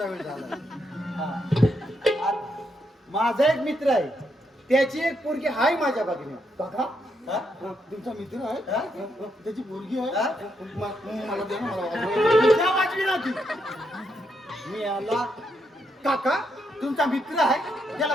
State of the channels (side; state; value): both; normal; correlation 0.79